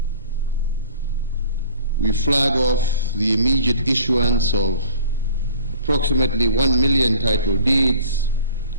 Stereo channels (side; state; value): both; inverted; correlation -0.46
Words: we flag off the immediate issuance of approximately 1 million title deeds